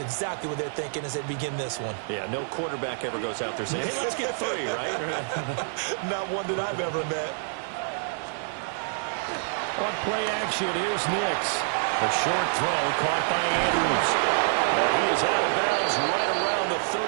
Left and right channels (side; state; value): left; silent; digital silence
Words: exactly what they're thinking as they begin this one. Yeah, no quarterback ever goes out there saying, hey, let's get 3, right? Not one that I've ever met. On play action, here's Nix. A short throw caught by Andrews. And he is out of bounds right around the